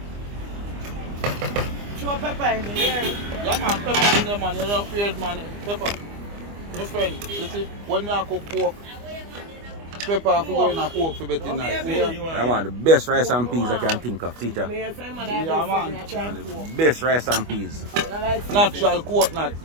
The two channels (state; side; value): late; left; 25 ms